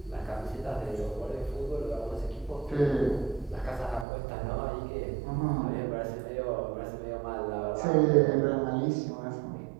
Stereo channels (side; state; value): left; drops out; at 4.0 s